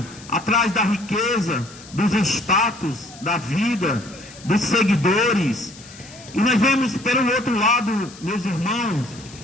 atrás da riqueza, dos status da vida, dos seguidores. E nós vemos pelo outro lado, meus irmãos,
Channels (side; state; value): left; noise; hiss, 19 dB below the sound